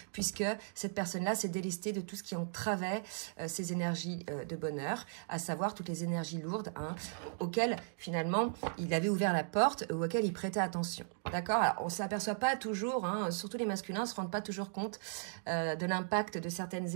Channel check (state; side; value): silent; left; digital silence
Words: puisque cette personne-là s'est délestée de tout ce qui entravait ses énergies de bonheur, à savoir toutes les énergies lourdes, hein, auxquelles, finalement, il avait ouvert la porte, ou auxquelles il prêtait attention. D'accord? Alors, on ne s'aperçoit pas toujours, hein, surtout les masculins ne se rendent pas toujours compte de l'impact de